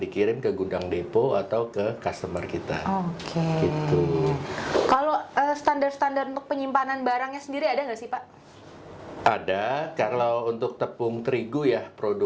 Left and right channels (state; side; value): identical; both; correlation 1.00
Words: dikirim ke gudang depo atau ke customer kita. Oke. Gitu. Kalau standar-standar untuk penyimpanan barangnya sendiri ada nggak sih Pak? Ada. Kalau untuk tepung terigu ya,